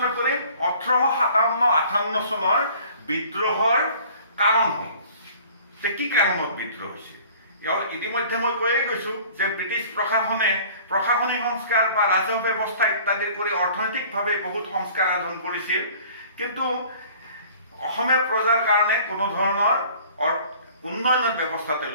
কৰিম 1857-58 চনৰ বিদ্ৰোহৰ কাৰণসমূহ, যে কি কাৰণত বিদ্ৰোহ হৈছিল। ইতিমধ্যে মই কৈয়ে গৈছোঁ যে ব্ৰিটিছ প্ৰশাসনে প্ৰশাসনিক সংস্কাৰ বা ৰাজহ ব্যৱস্থা ইত্যাদি কৰি অৰ্থনৈতিকভাৱে বহুত সংস্কাৰ সাধন কৰিছিল, কিন্তু অসমীয়া প্ৰজাৰ কাৰণে কোনো ধৰণৰ উন্নয়নৰ ব্যৱস্থা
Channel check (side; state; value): both; inverted; correlation -0.50